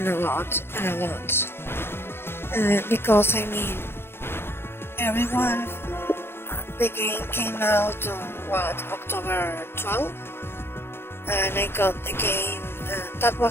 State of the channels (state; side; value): late; right; 0.11 ms